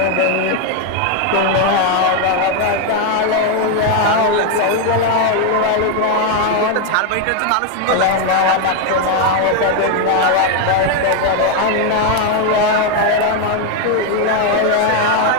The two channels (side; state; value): both; different; correlation 0.01